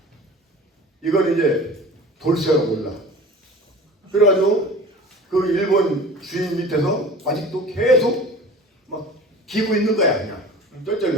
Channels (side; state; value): both; normal; correlation 0.40